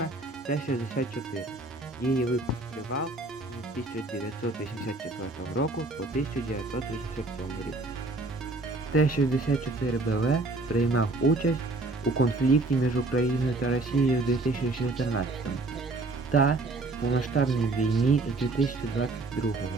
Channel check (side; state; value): left; quieter; 3.2 dB